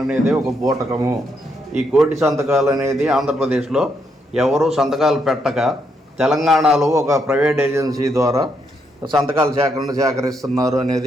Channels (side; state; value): both; normal; correlation 0.77